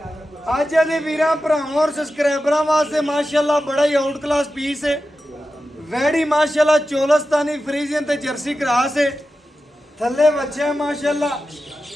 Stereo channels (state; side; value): normal; both; correlation 0.92